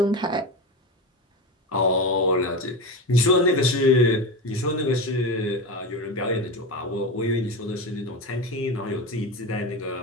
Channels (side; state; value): both; normal; correlation 0.22